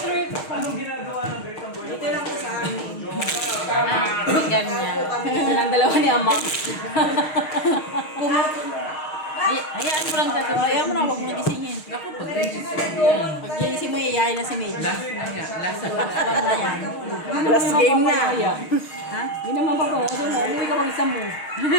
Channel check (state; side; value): late; right; 6.5 ms